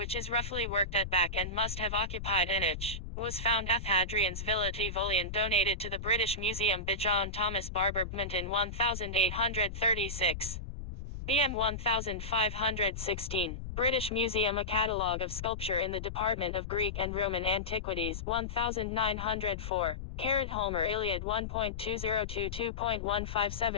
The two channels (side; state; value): left; noise; rumble, 7 dB below the sound